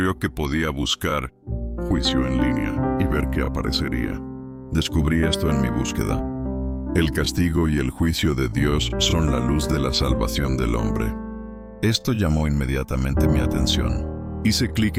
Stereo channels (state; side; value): identical; both; correlation 1.00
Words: que podía buscar juicio en línea y ver qué aparecería. Descubrí esto en mi búsqueda. El castigo y el juicio de Dios son la luz de la salvación del hombre. Esto llamó inmediatamente mi atención. Hice clic